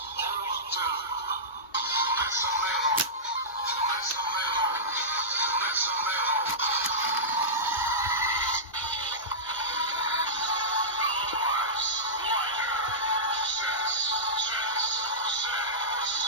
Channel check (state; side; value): normal; both; correlation -0.17